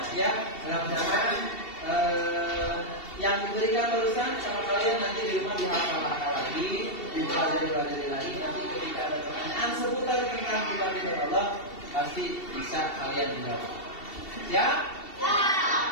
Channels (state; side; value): late; right; 2.7 ms